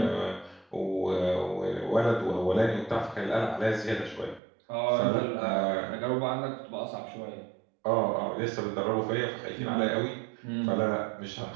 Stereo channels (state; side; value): drops out; left; at 4.4 s